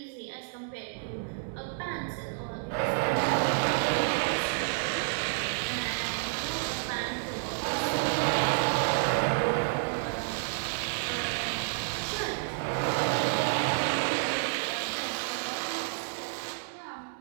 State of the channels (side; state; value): left; silent; digital silence